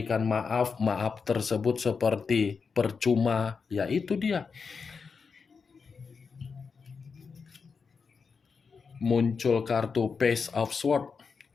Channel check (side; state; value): right; quieter; 5.3 dB